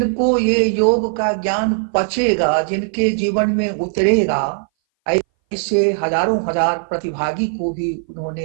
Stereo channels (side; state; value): left; silent; 60 dB below the other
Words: ये योग का ज्ञान पचेगा, जिनके जीवन में उतरेगा, ऐसे हजारों हजार प्रतिभागी को भी